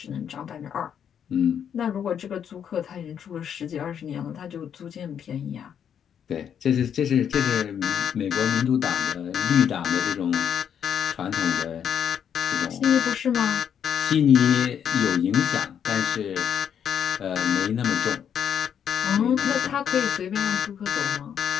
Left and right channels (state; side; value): quieter; right; 8.5 dB